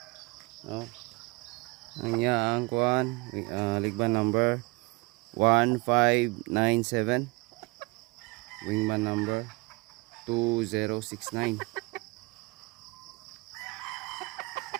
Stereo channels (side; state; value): left; quieter; 26.2 dB